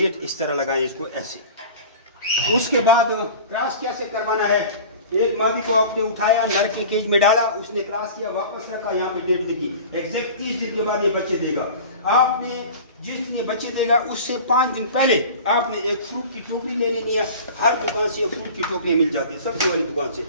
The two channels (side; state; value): both; inverted; correlation -0.39